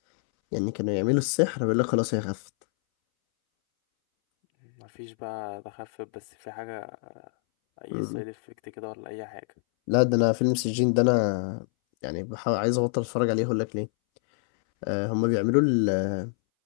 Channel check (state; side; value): silent; right; 60 dB below the other